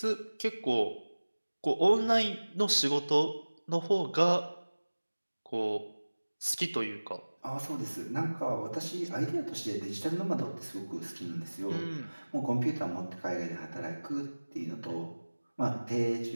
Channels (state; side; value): inverted; both; correlation -1.00